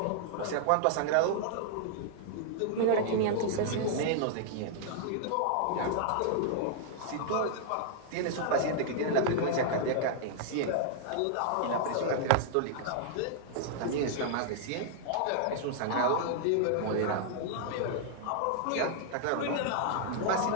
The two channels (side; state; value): both; different; correlation -0.01